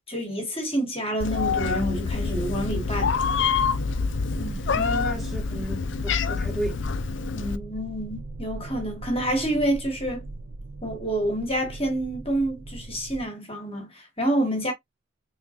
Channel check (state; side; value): normal; both; correlation 0.45